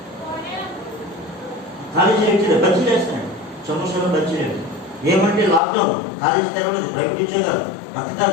College lecturer బజ్జీలు వేస్తున్నాడు, సమోసాలో బజ్జీలు. ఏమంటే లాక్డౌన్, కాలేజీ తెరవలేదు, ప్రైవేట్ ఉద్యోగాలు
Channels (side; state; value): right; drops out; at 5.6 s